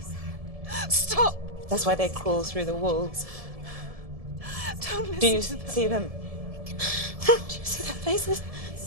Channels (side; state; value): left; late; 1.7 ms